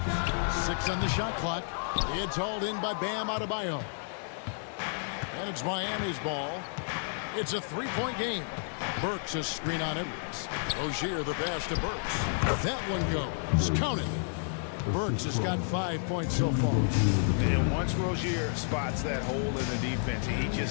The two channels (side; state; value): right; silent; digital silence